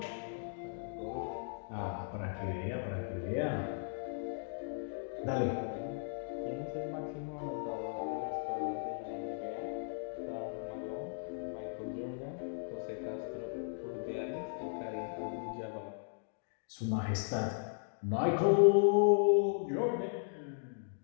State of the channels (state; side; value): silent; right; digital silence